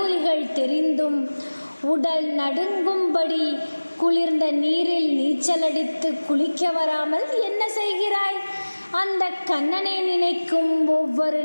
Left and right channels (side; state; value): both; inverted; correlation -1.00